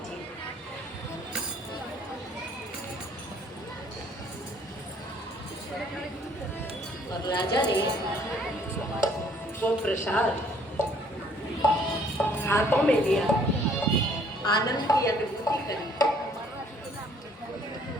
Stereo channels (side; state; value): both; normal; correlation 0.61